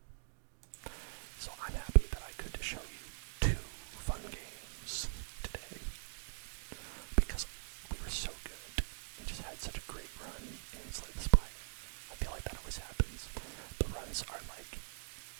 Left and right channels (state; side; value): silent; left; digital silence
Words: So I'm happy that I could show you 2 fun games today because we were so good and just had such a great run in Slay The Spire. I feel like that always happens. The runs are like